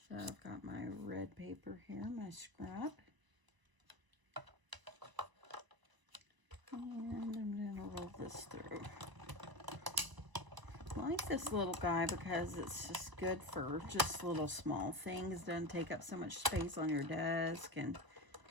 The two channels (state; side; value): late; left; 1.0 ms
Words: So I've got my red paper here, my scrap. And I'm going to roll this through. I like this little guy because it's just good for just little small things. It doesn't take up so much space on your desk. And